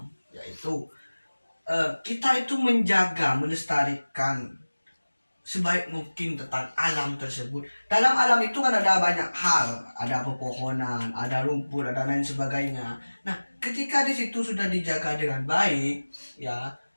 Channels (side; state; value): both; inverted; correlation -1.00